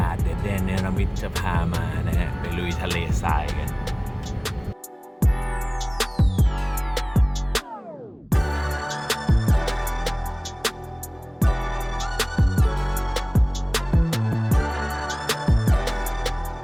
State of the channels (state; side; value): identical; both; correlation 1.00